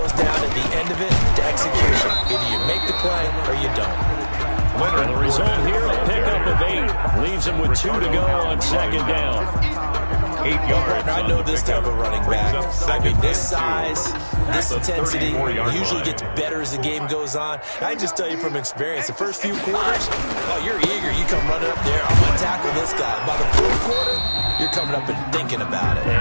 down at the end of it to execution. Either you make the play or you don't. And the result here, a pickup of 8. Leaves him with 2 to go on 2nd down. 8 yards. I know this type of running back. I mean, this size, this intensity usually gets better as the game goes on. I just tell you from experience, the first few quarters, oh, you're eager. You come running up there, I'm going to tackle this guy. By the 4th quarter, you're coming up and thinking about it.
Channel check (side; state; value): both; inverted; correlation -1.00